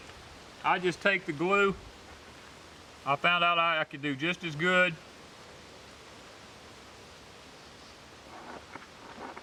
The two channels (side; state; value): both; identical; correlation 1.00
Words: I just take the glue. I found out I could do just as good